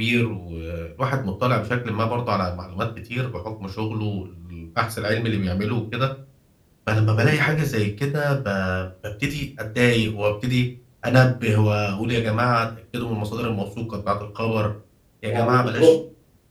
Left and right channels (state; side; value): identical; both; correlation 1.00